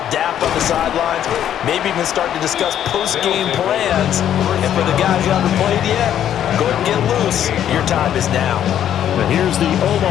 dap on the sidelines, maybe even start to discuss post-game plans. And for the guys who haven't played yet, go ahead and get loose. Your time is now. But here's the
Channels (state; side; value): quieter; right; 10.4 dB